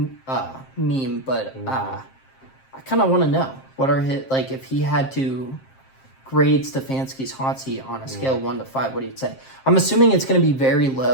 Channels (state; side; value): late; right; 7.5 ms